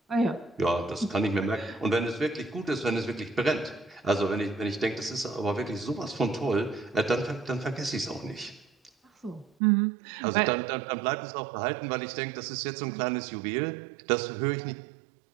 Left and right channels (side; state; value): left; drops out; at 9.5 s